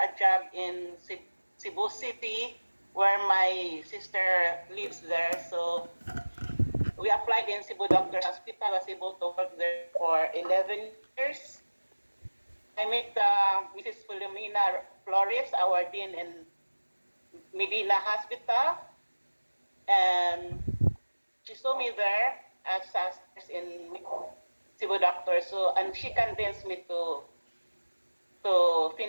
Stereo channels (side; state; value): both; inverted; correlation -1.00